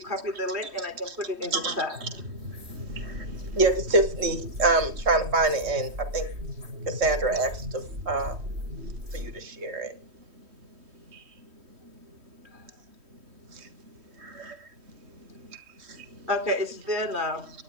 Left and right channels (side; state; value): left; late; 3.1 ms